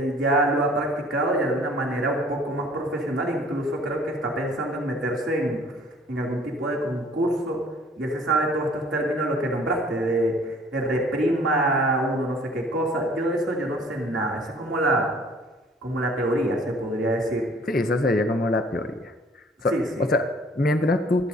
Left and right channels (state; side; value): normal; both; correlation 0.54